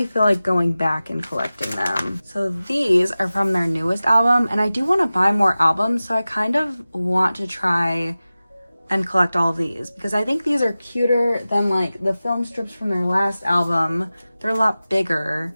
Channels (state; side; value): inverted; both; correlation -0.96